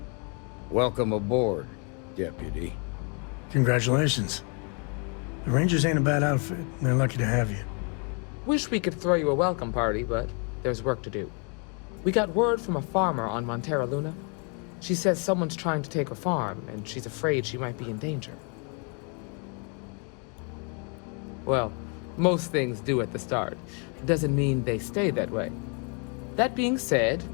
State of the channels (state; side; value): quieter; right; 36.8 dB